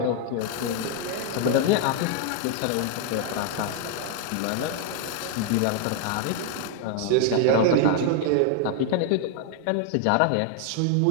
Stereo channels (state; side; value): different; both; correlation 0.00